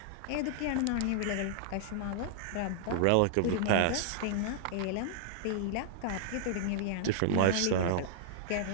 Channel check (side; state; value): both; different; correlation -0.01